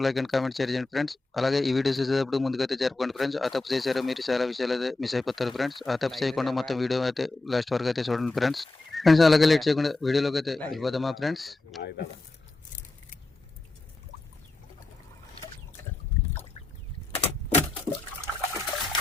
లైక్ అండ్ కామెంట్ షేర్ చేయండి ఫ్రెండ్స్. అలాగే ఈ వీడియోస్ చూసేటప్పుడు ముందుకైతే జరుపుకోండి ఫ్రెండ్స్. ఆ తప్పు చేశారో మీరు చాలా విషయాలు అయితే మిస్ అయిపోతారు ఫ్రెండ్స్. ఆ తప్పు చేయకుండా మొత్తం వీడియో అయితే లాస్ట్ వరకు అయితే చూడండి ఫ్రెండ్స్. అలాగే లేట్ చేయకుండా వీడియోలోకి అయితే వెళ్ళిపోదామా ఫ్రెండ్స్.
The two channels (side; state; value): right; quieter; 3.1 dB